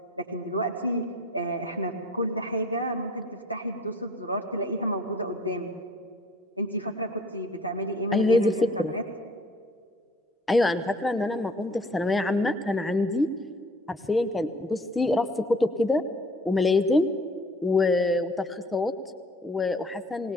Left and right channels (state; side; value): normal; both; correlation 0.53